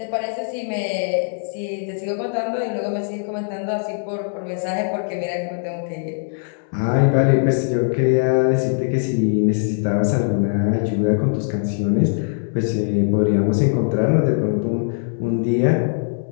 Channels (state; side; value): silent; right; 65 dB below the other